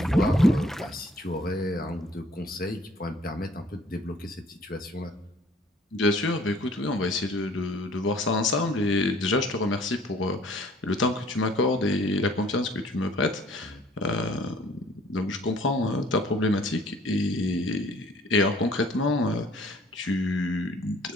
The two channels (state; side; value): normal; both; correlation 0.56